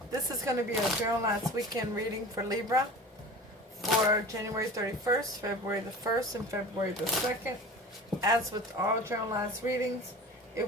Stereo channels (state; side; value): normal; both; correlation 0.36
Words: This is going to be a Journal Last Weekend reading for Libra for January 31st, February the 1st, and February the 2nd. As with all Journal Last readings,